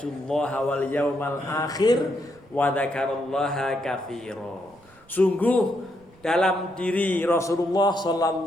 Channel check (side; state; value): right; noise; rumble, 29 dB below the sound